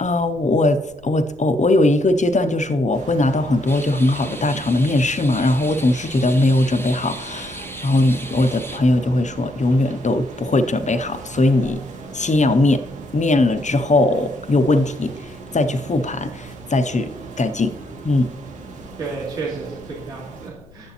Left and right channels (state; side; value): noise; left; rumble, 26 dB below the sound